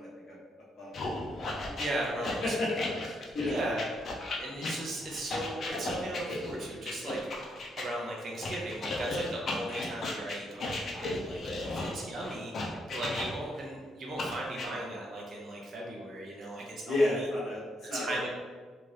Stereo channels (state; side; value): normal; both; correlation 0.76